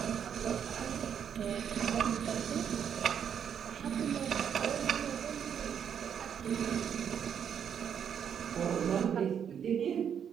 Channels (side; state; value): left; quieter; 8.2 dB